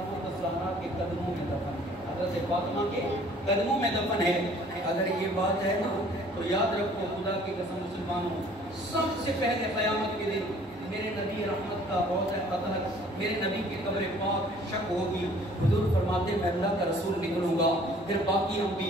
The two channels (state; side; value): normal; both; correlation 0.55